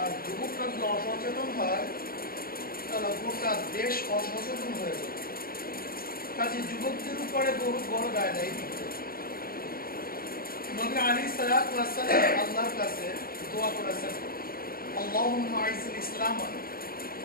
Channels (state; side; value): late; right; 0.43 ms